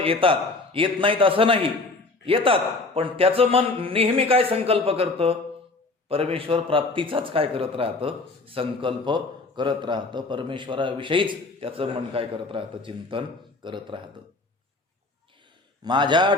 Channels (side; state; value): right; quieter; 3.3 dB